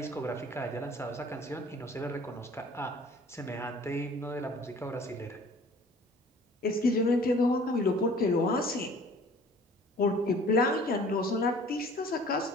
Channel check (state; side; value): normal; both; correlation 0.50